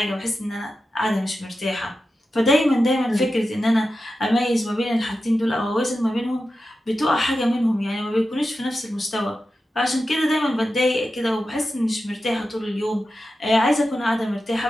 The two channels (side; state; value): both; normal; correlation 0.91